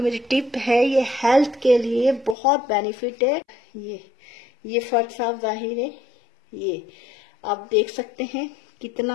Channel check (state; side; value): drops out; right; at 2.4 s